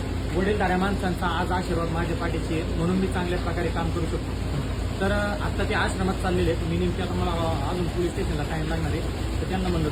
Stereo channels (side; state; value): both; identical; correlation 1.00